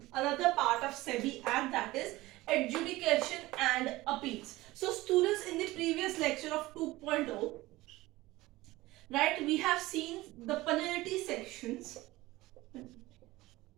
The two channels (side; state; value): left; quieter; 18.8 dB